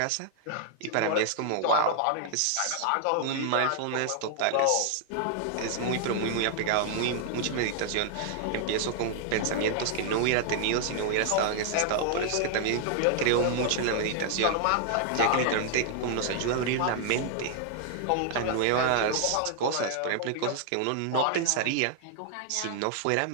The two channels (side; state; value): both; different; correlation -0.01